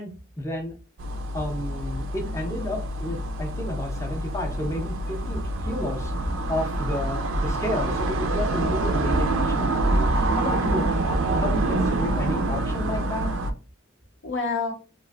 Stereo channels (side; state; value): both; normal; correlation 0.54